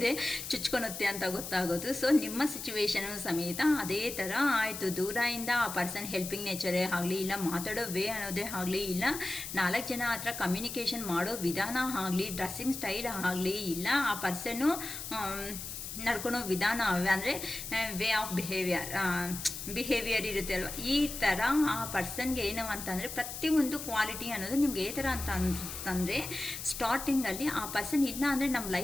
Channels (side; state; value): left; noise; hiss, 8 dB below the sound